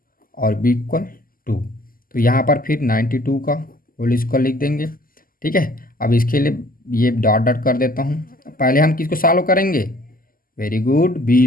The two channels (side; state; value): right; late; 0.42 ms